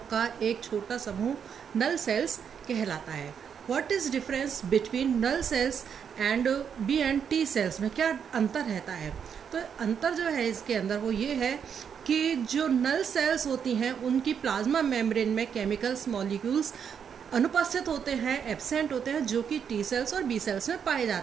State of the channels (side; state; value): left; quieter; 7.5 dB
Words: का एक छोटा समूह नल सेल्स कहलाता है। What is difference between null cells and B and T cells में क्या अंतर रहता है? तो अंतर जो है इसके अंदर वो ये है कि जो नल सेल्स होती हैं उनकी प्लाज्मा मेम्ब्रेन में केमिकल्स मॉलिक्यूल्स अनुपस्थित होते हैं, एब्सेंट होते हैं, जो कि टी सेल्स और बी सेल्स में पाए